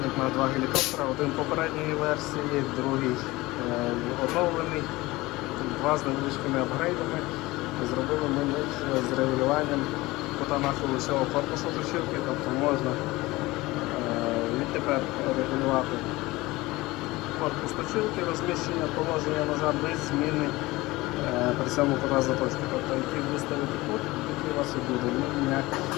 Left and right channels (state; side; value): quieter; right; 20.3 dB